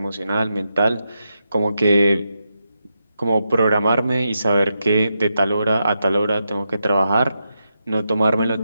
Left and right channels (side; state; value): both; inverted; correlation -0.86